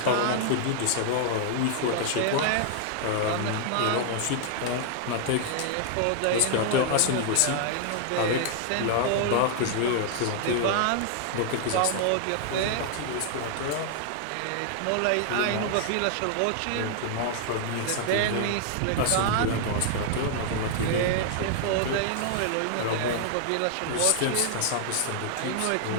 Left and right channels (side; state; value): both; different; correlation 0.00